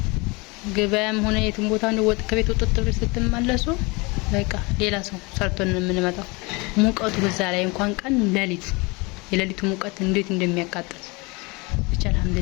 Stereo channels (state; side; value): quieter; right; 26.7 dB